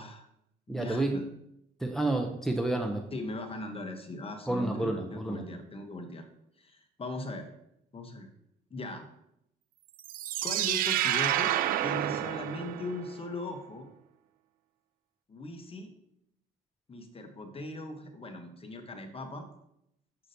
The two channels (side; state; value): left; quieter; 4.2 dB